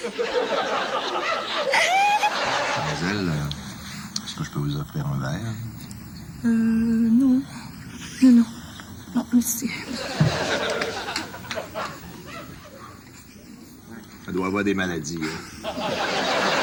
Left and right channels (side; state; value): both; identical; correlation 1.00